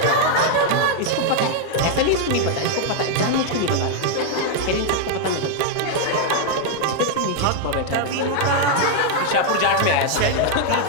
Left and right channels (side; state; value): both; different; correlation 0.00